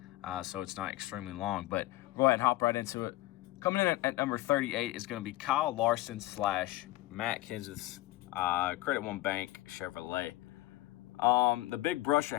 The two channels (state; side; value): quieter; right; 17.7 dB